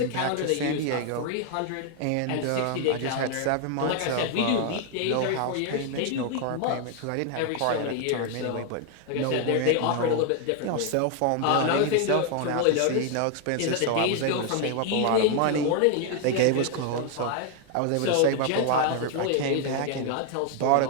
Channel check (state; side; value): different; both; correlation 0.00